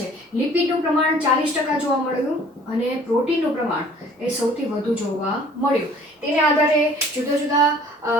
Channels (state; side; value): normal; both; correlation 0.52